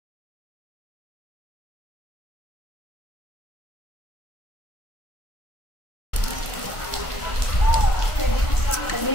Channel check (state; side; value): late; right; 1.5 ms